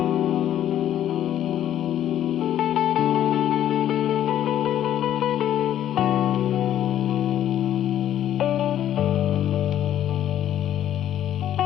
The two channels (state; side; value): quieter; right; 11.3 dB